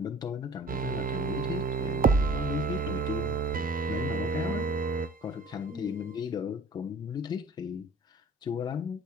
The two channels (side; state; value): both; normal; correlation 0.48